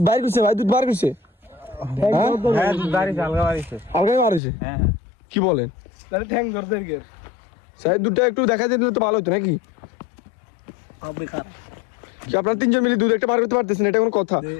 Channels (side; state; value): right; drops out; at 4.4 s